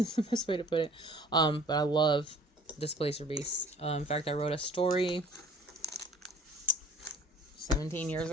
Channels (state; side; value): normal; both; correlation 0.50